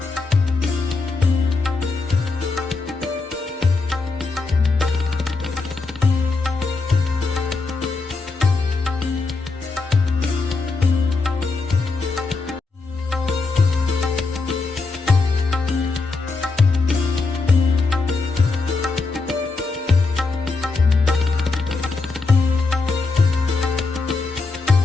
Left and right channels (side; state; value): right; quieter; 3.9 dB